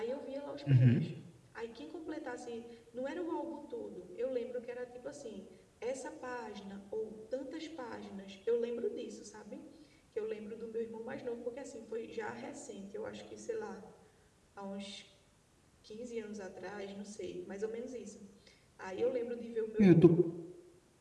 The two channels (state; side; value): identical; both; correlation 1.00